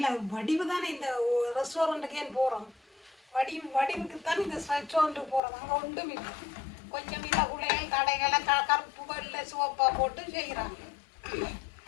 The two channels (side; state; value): right; drops out; at 5.4 s